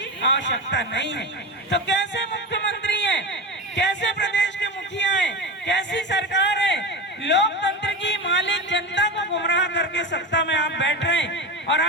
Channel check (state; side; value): normal; both; correlation 0.22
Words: आवश्यकता नहीं है। तो कैसे मुख्यमंत्री हैं, कैसे प्रदेश के मुखिया हैं, कैसी सरकार है, लोकतंत्र की मालिक जनता को गुमराह करके सत्ता में आप बैठ रहे हैं और